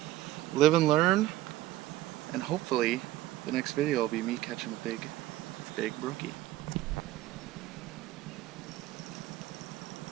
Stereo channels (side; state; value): left; quieter; 15.5 dB